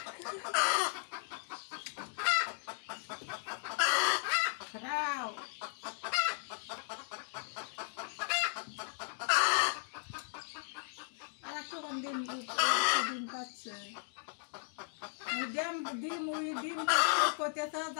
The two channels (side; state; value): right; silent; digital silence